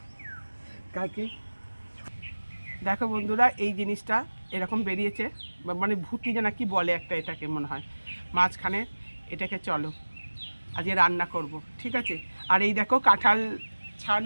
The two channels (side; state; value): both; inverted; correlation -1.00